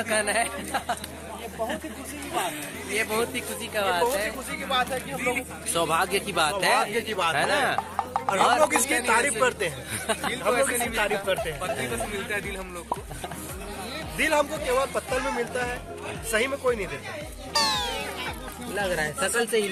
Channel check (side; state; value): both; identical; correlation 1.00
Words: कहना है। बहुत ही खुशी की बात है, ये बहुत ही खुशी का बात है, खुशी की बात है कि हम लोग सौभाग्य की बात है ना। और हम लोग इसकी तारीफ करते हैं, हम लोग इसकी तारीफ करते हैं। पत्नी बस मिलता है दिल हम लोग को, दिल हमको केवल पत्तल में मिलता है, सही में कोई नहीं देता। लग रहा है शकल से ही